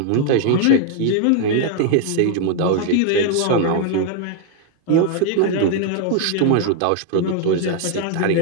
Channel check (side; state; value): both; different; correlation 0.00